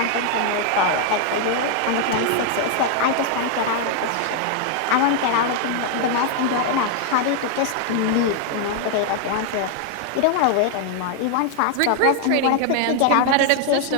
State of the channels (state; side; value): different; both; correlation 0.00